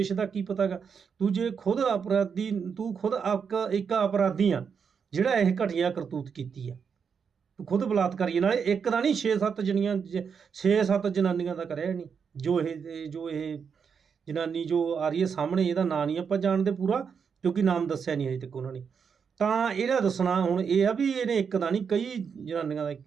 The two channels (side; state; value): left; quieter; 6.5 dB